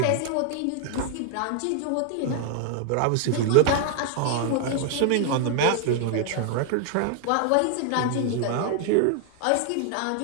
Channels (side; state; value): both; different; correlation 0.00